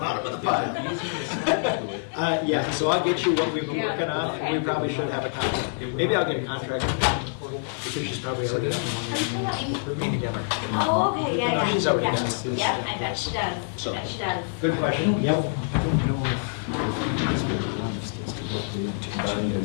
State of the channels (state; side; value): silent; right; digital silence